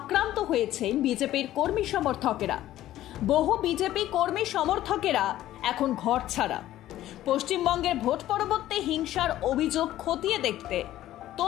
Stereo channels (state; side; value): quieter; right; 13.9 dB